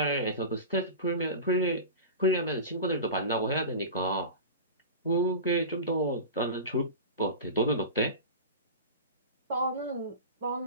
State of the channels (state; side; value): inverted; both; correlation -0.30